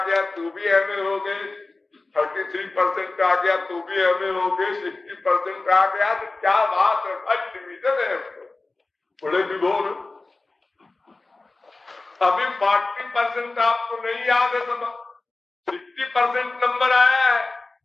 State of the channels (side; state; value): right; quieter; 3.4 dB